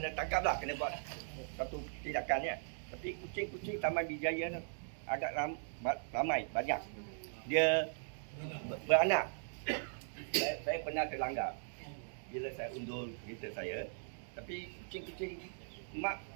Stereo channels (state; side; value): silent; left; digital silence